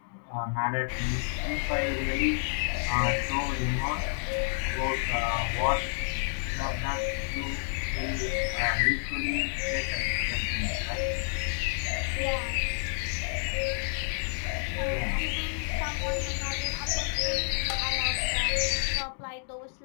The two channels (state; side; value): silent; right; digital silence